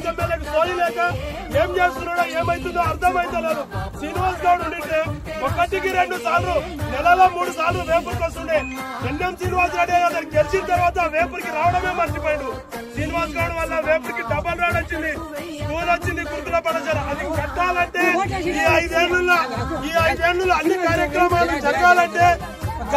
ఎమ్మెల్యేకి సోయి లేక ఏం చేస్తున్నాడో ఏమైతుందో అర్థమైతలేదు. శ్రీనివాస్ గౌడ్ ఉంటే 1కి 2 సార్లు నెలలో 3 సార్లు వేపురికి వస్తుండే. ఎన్ఎం శ్రీనివాస్ రెడ్డి గారు గెలిచిన తర్వాత వేపురికి రావడమే మర్చిపోయాడు. శ్రీనివాస్ గౌడ్ వల్ల వేపురికి డబల్ రాడ్ వచ్చింది, స్కూల్ వచ్చింది, గురుకుల పాఠశాల. అది కట్టాలంటే ఈ 5 ఏళ్లలో అన్ని కార్యక్రమాలు జరగాలంటే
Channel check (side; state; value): both; identical; correlation 1.00